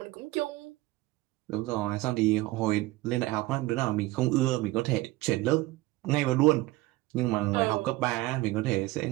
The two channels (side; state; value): left; quieter; 19.2 dB